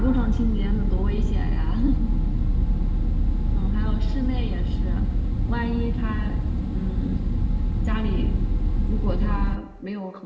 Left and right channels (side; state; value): both; identical; correlation 1.00